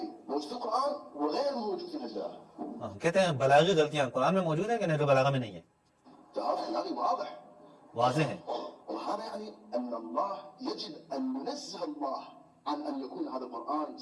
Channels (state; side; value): identical; both; correlation 1.00